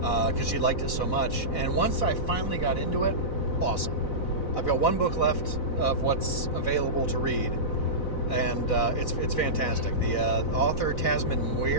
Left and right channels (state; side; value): late; right; 4.0 ms